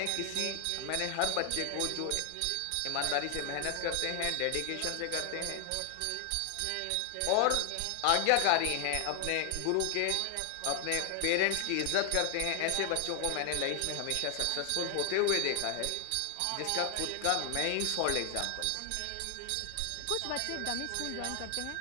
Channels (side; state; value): both; different; correlation 0.00